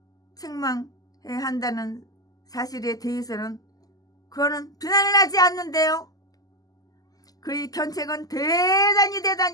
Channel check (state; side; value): late; right; 0.18 ms